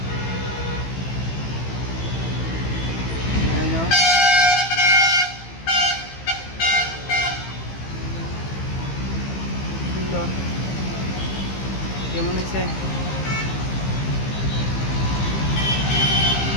এই তো সুন্দর, কেমন হয়েছে?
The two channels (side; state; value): right; late; 15 ms